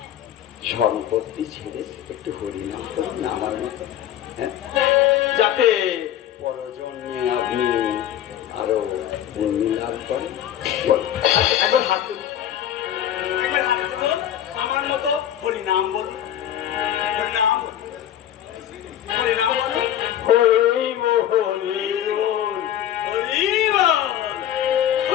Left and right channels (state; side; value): quieter; right; 11.1 dB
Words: সম্পত্তি ছেড়ে একটু হরিনাম করুন না আমার মতো, যাতে পরজন্মে আপনি আরো পুণ্য লাভ করেন। একবার হাত তুলুন, একবার হাত তুলুন, আমার মতো হরিনাম বলুন, হরিনাম বলুন, হরিনাম বলুন, হরি বল, হরি বল,